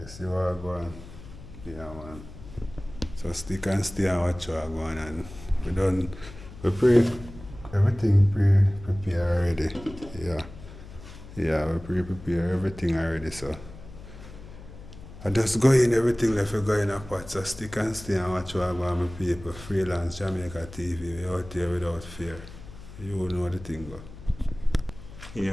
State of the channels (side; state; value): left; noise; hum, 16 dB below the sound